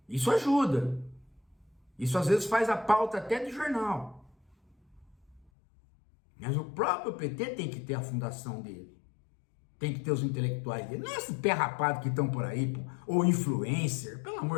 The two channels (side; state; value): right; drops out; at 5.5 s